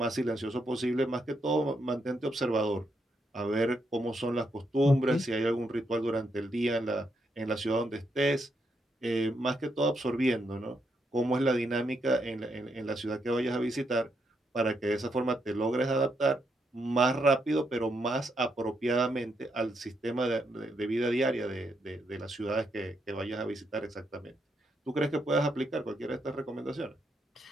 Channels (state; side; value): normal; both; correlation 0.79